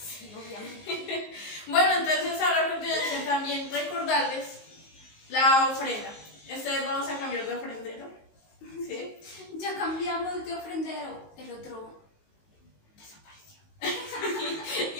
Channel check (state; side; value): late; right; 19 ms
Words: obviamente. Bueno, entonces ahora a continuación también recordarles la ofrenda. Esta vez vamos a cambiar de ofrendero, ¿sí? Ya cambiamos de ofrendero, el otro desapareció. Y